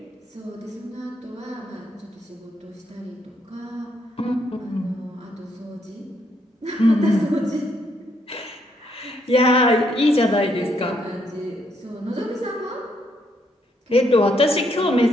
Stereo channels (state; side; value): normal; both; correlation 0.73